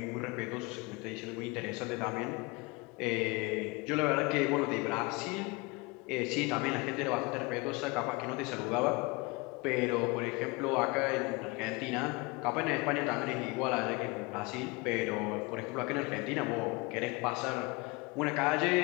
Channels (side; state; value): right; quieter; 26.2 dB